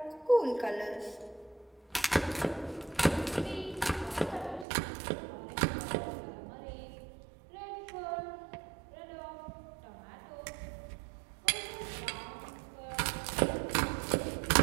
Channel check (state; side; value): drops out; left; at 4.7 s